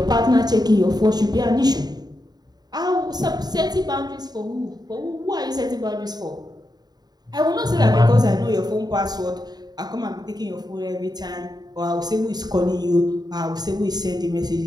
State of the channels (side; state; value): left; late; 0.20 ms